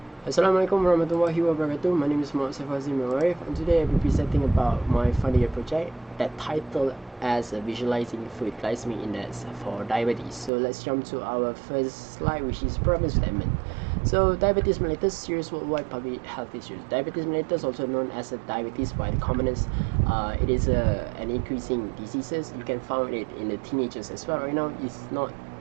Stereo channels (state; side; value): drops out; left; at 10.5 s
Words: Assalamualaikum warahmatullahi wabarakatuh. My name is Azim, and today I'll be presenting about my final year project that titled as Visualizing Food Glycemic Index for Diabetes. So let's jump to our first slide, which is problem statement. So diabetes mellitus, serious worldwide public health issues. Diabetes mellitus, also known as diabetes by the commoners, it is an increasing diseases. You can find it in the teenagers as well. Right now, it's not